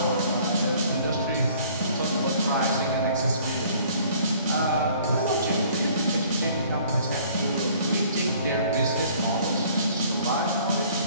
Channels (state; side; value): inverted; both; correlation -0.55